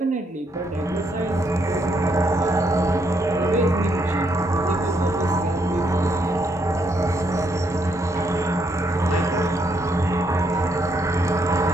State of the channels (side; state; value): both; normal; correlation 0.74